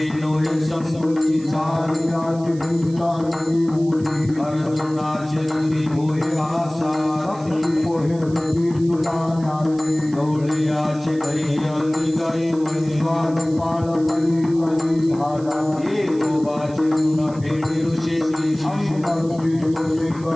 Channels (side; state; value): right; noise; hiss, 23 dB below the sound